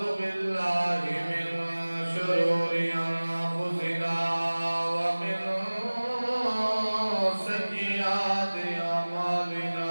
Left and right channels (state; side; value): inverted; both; correlation -1.00